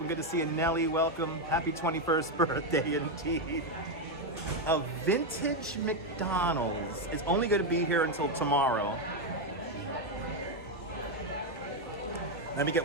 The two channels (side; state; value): both; normal; correlation 0.05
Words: Good to see you, Nelly. Welcome. Happy 21st birthday, indeed. A vintage McDonald's is only going to be here until tomorrow. Let me